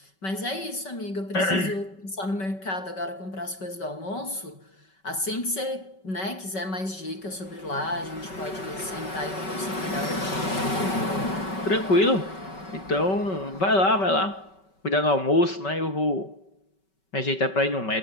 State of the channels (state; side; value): late; right; 5.3 ms